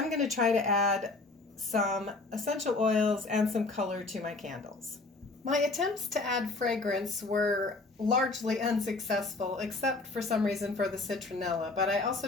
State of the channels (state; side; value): quieter; right; 3.4 dB